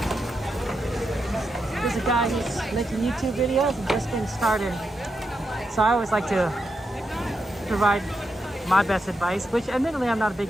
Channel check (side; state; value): both; normal; correlation 0.85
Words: There's a guy who's making YouTube videos and just getting started. So I always like to provide my best advice, which admittedly I'm not a big